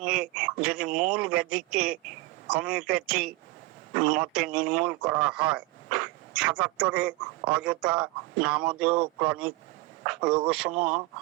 যদি মূল ব্যাধিকে হোমিওপ্যাথি মতে নির্মূল করা হয়। 77 অযথা নামধেয় ক্রনিক রোগসমূহ।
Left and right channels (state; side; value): quieter; left; 20.6 dB